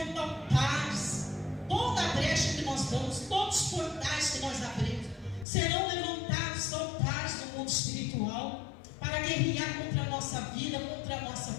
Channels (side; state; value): right; drops out; at 5.5 s